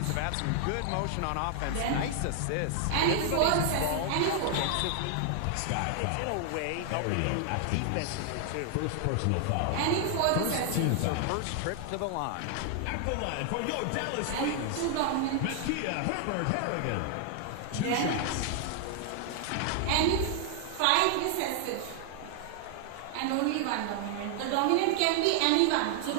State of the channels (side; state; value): both; different; correlation 0.00